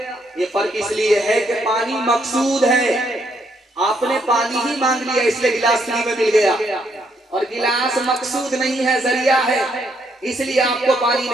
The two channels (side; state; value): both; normal; correlation 0.74